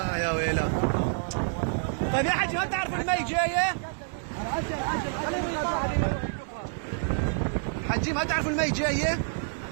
يا ويلا. طيب يا حجي ما تعرف المي جايه؟ حجي ما تعرف المي جايه؟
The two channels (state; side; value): silent; left; 59 dB below the other